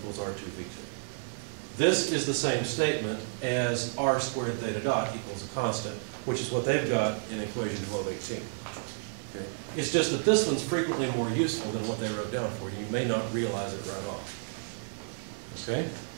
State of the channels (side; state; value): left; silent; digital silence